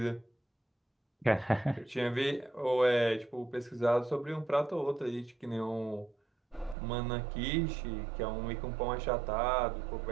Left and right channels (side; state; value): left; drops out; at 6.8 s